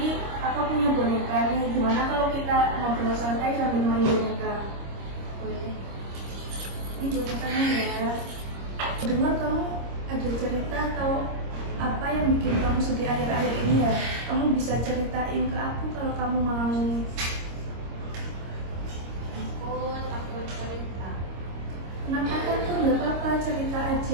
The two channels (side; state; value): left; late; 26 ms